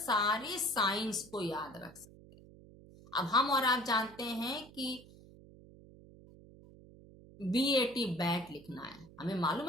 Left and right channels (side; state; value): right; noise; hum, 21 dB below the sound